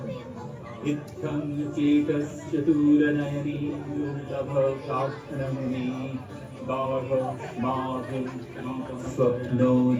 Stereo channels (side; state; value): both; identical; correlation 1.00